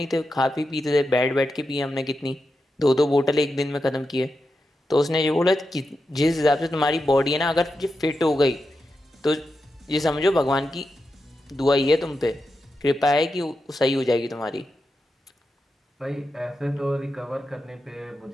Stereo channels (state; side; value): normal; both; correlation 0.88